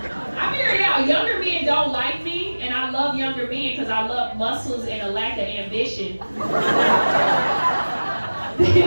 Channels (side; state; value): both; inverted; correlation -1.00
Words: I figured out, younger men don't like me, and I love younger men because I love muscles and a lack of ambition.